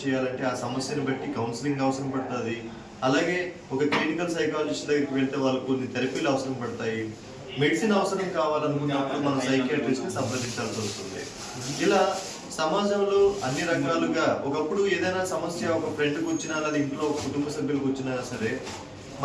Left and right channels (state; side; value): identical; both; correlation 1.00